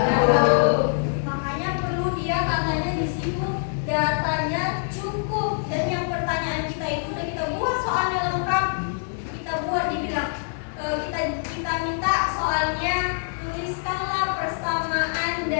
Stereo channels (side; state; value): right; silent; digital silence